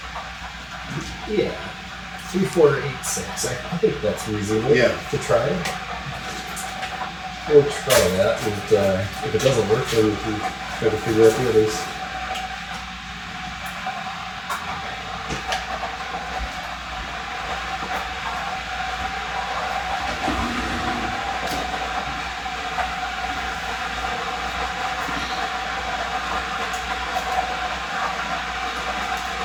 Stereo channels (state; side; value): identical; both; correlation 1.00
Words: Yeah. 3, 4, 8, 6. I think that's reasonable Yeah. to try. We'll try that, and if it doesn't work, then we can try to figure out the others.